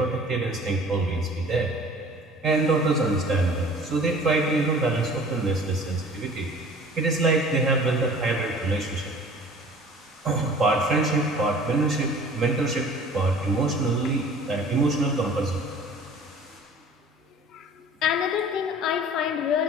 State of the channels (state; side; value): normal; both; correlation 0.47